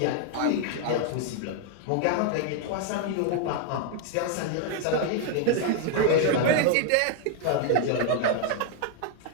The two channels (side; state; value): both; different; correlation 0.00